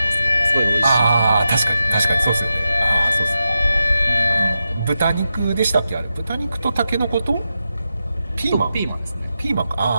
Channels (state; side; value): inverted; both; correlation -0.89